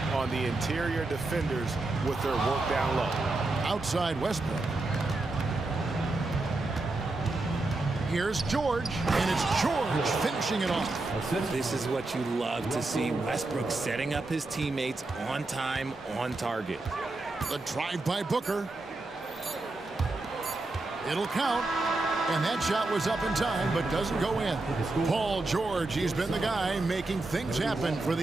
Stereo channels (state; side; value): quieter; left; 3.1 dB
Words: on the interior defenders with their work down low. Outside Westbrook. Here's George, and it's George finishing it off. This is what you love to see. Westbrook setting up his teammates on time, on target. The drive by Booker. It'll count. And that shot was up in time, but doesn't go in. Paul George, he's been the guy making things happen for